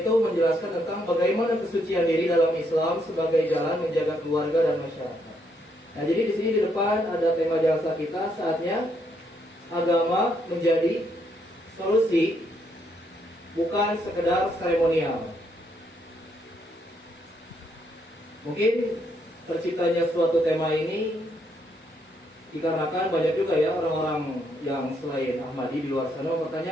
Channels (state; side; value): normal; both; correlation 0.74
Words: menjelaskan tentang bagaimana kesucian diri dalam Islam sebagai jalan menjaga keluarga dan masyarakat. Nah, jadi di sini di depan ada tema jasa kita, saatnya agama menjadi solusi, bukan sekedar seremonial. Mungkin terciptanya suatu tema ini dikarenakan banyak juga ya orang-orang yang selain Ahmadi di luar sana